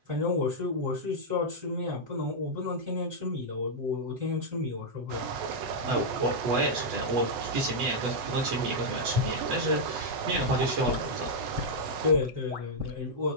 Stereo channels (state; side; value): late; left; 8.1 ms